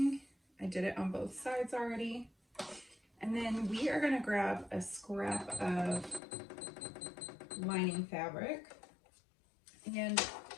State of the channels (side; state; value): right; drops out; at 6.2 s